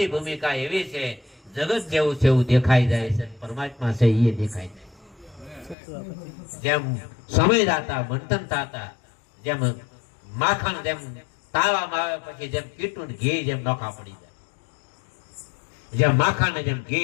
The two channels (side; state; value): right; drops out; at 5.8 s